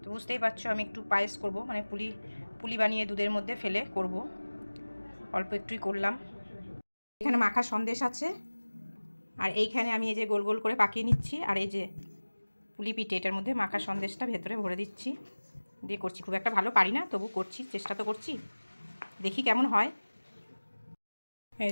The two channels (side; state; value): both; inverted; correlation -1.00